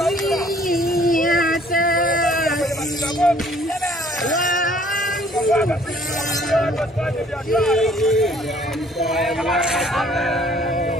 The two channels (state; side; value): normal; both; correlation 0.58